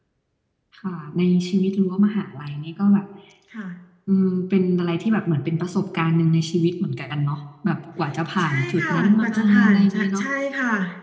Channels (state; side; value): identical; both; correlation 1.00